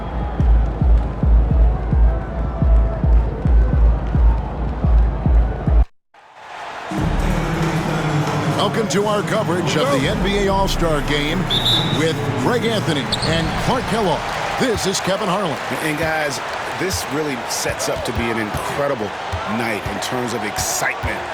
Welcome to our coverage of the NBA All-Star Game with Greg Anthony and Clark Kellogg. This is Kevin Harlan. And guys, this really sets up to be an incredible night in terms of excitement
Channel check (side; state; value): both; identical; correlation 1.00